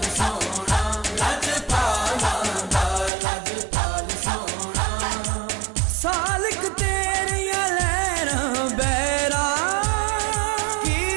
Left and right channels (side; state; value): left; drops out; at 3.1 s